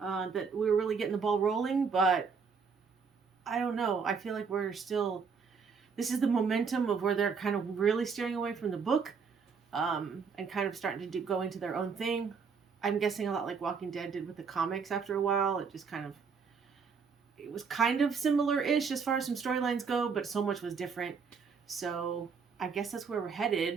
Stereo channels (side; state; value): left; quieter; 5.7 dB